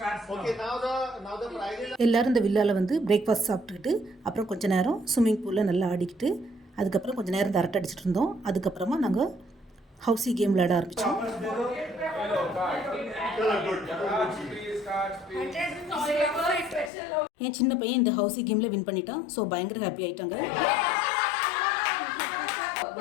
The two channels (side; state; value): right; drops out; at 16.9 s